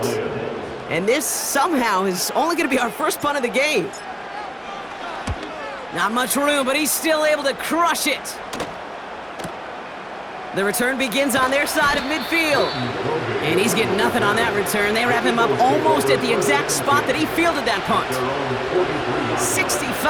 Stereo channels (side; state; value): both; identical; correlation 1.00